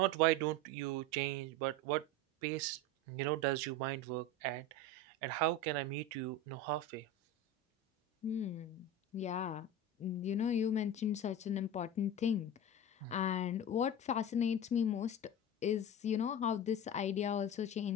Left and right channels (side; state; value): both; normal; correlation 0.27